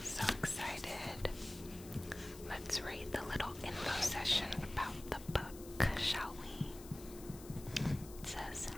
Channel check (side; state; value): left; noise; hiss, 16 dB below the sound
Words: So excited. Let's read the little info session about the book, shall we? It says,